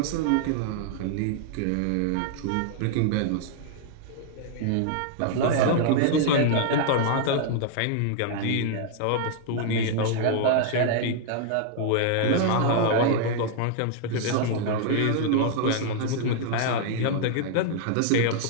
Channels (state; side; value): different; both; correlation 0.00